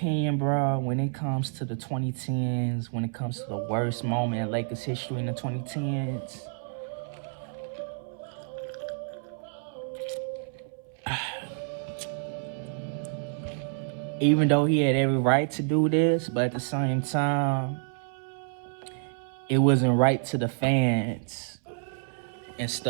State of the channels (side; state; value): left; silent; 59 dB below the other